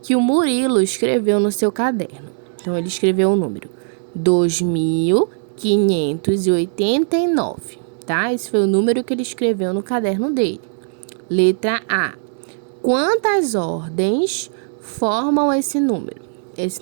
que o Murilo escreveu no seu caderno. Então, ele escreveu o número 2.589, tá? Esse foi o número que ele escreveu no caderno dele. Letra A. Quantas ordens formam esse número?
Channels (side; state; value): left; silent; digital silence